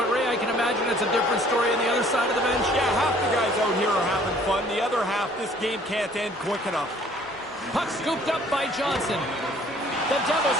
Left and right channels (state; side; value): normal; both; correlation 0.56